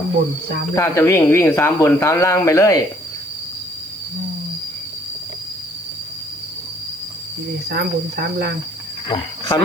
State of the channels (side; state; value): right; noise; hiss, 24 dB below the sound